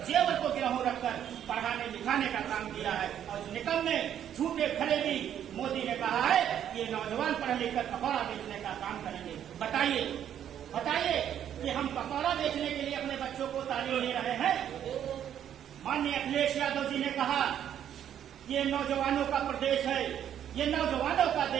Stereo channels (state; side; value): quieter; left; 9.9 dB